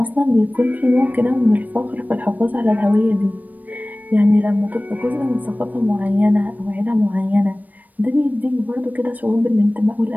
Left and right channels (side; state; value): left; late; 0.082 ms